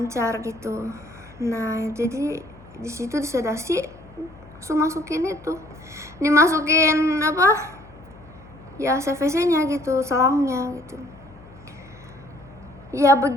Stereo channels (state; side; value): noise; left; hum, 22 dB below the sound